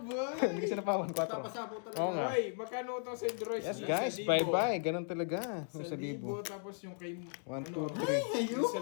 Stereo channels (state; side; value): silent; right; 54 dB below the other